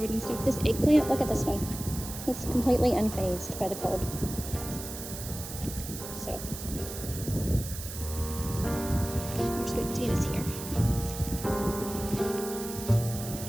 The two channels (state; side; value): noise; right; hiss, 10 dB below the sound